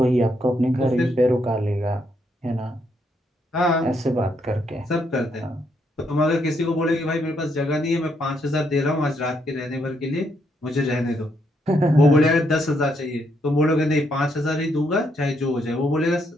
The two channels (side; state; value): both; normal; correlation 0.75